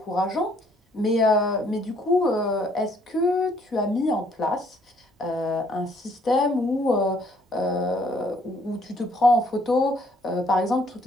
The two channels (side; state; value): both; normal; correlation 0.64